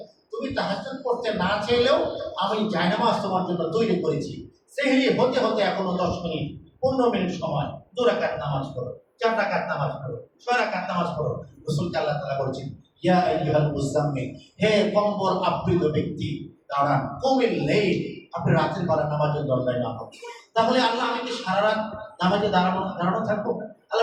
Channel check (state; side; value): identical; both; correlation 1.00